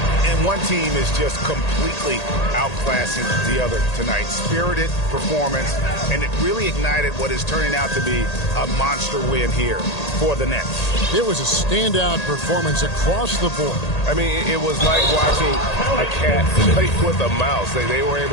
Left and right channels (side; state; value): right; late; 1.8 ms